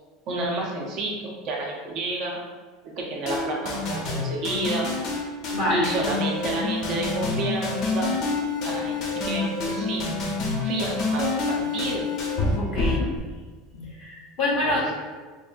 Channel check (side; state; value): both; normal; correlation 0.32